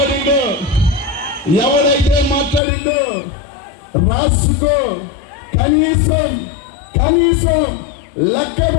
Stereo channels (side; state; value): right; drops out; at 2.6 s